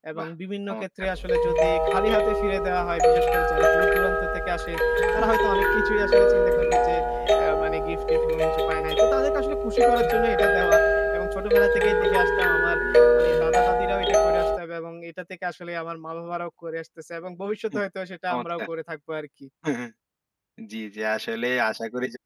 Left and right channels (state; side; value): identical; both; correlation 1.00